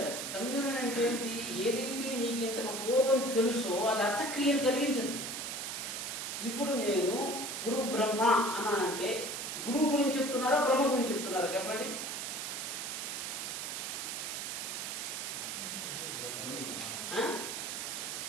కమ్యూనియన్ అంటే ఏంటి? ఏదైతే మీకు ఇంతకు పూర్వం తెలుసో అది అర్థక్రియను కలిగించదు. ఇప్పుడు నేను గురు బ్రహ్మ అన్నా అంటే గురువు గురించి చెప్తున్నారా, బ్రహ్మ గురించి చెప్తున్నారా? చెప్పండి.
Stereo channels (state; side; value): noise; right; hiss, 4 dB below the sound